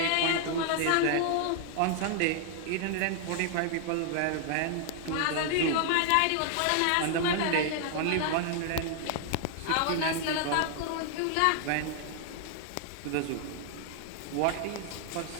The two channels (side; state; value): both; different; correlation 0.00